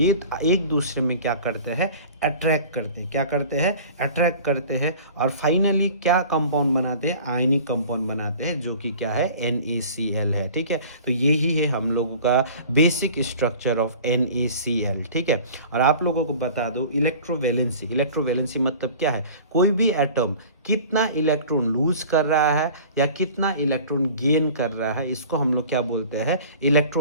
एक दूसरे में क्या करते हैं, अट्रैक्ट करते हैं। क्या करते हैं, अट्रैक्ट करते हैं और फाइनली क्या कंपाउंड बनाते हैं, आयनिक कंपाउंड बनाते हैं, जो कि क्या है, NaCl है, ठीक है। तो यही है हम लोगों का बेसिक स्ट्रक्चर ऑफ NaCl, ठीक है। और आप लोगों को बता दो इलेक्ट्रोवैलेंसी, इलेक्ट्रोवैलेंसी मतलब क्या है, कोई भी एटम कितना इलेक्ट्रॉन लूज कर रहा है या कितना इलेक्ट्रॉन गेन कर रहा है, इसको हम लोग क्या बोलते हैं,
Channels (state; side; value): inverted; both; correlation -0.43